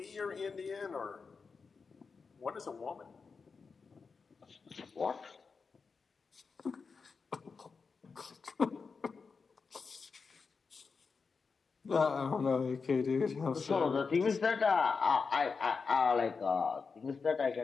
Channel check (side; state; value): right; quieter; 5.0 dB